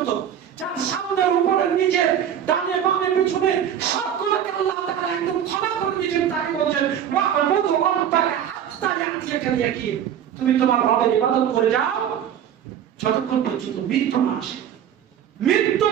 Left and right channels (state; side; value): quieter; left; 9.5 dB